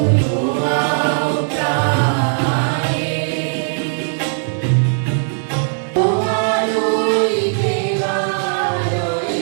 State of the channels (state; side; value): silent; left; 67 dB below the other